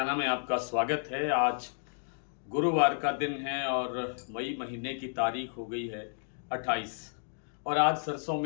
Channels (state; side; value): silent; right; digital silence